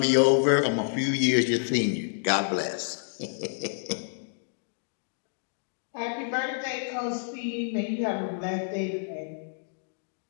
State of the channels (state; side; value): silent; right; digital silence